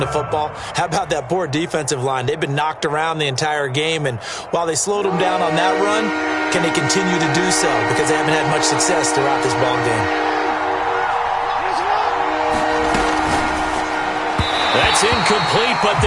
the football. How about that poor defensive line? They've been knocked around the entire game, and while they slowed them down on that run, can they continue to do so? Because they haven't had much success throughout this ball game. That's incomplete, but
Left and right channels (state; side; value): identical; both; correlation 1.00